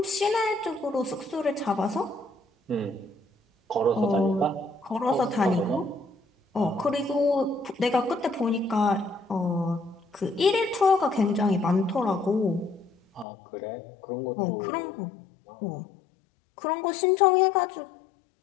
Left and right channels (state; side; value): drops out; right; at 13.2 s